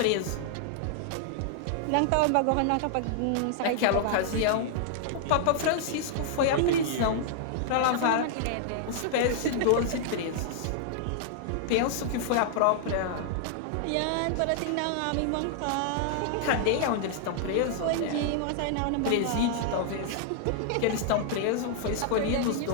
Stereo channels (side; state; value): both; different; correlation -0.01